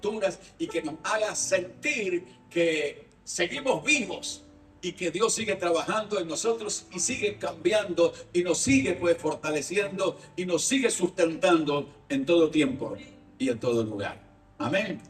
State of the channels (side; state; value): both; identical; correlation 1.00